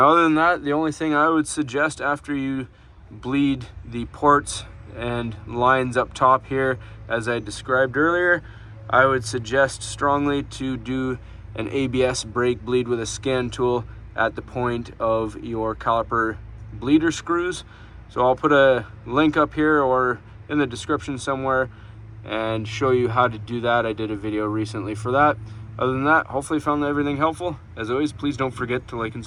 other than that, the only thing I would suggest after you bleed the ports and lines up top here, as I described earlier, I would suggest strongly to do an ABS brake bleed with a scan tool at the point of your caliper bleeder screws. So I'll put a link up here or in the description somewhere and show you how to do that. I did a video recently for that. Other than that, hopefully you found everything helpful. As always, please don't forget to like and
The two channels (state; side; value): identical; both; correlation 1.00